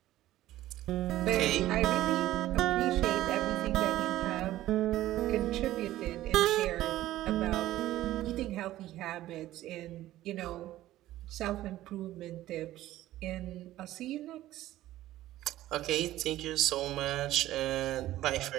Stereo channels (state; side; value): quieter; left; 14.8 dB